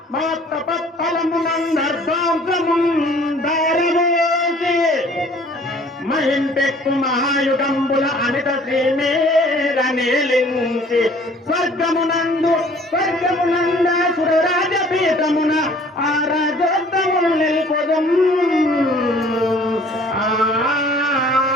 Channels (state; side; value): normal; both; correlation 0.53